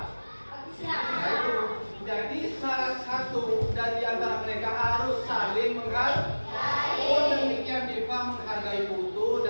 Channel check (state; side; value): inverted; both; correlation -1.00